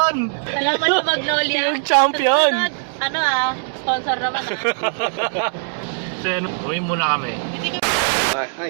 Alam mo yung Magnolia. Yung champion! Susunod, ano sponsor naman So yun, uwi muna kami.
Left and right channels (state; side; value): silent; left; digital silence